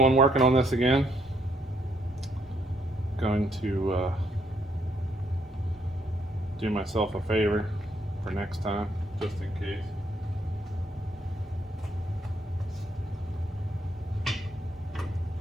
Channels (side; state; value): both; normal; correlation 0.72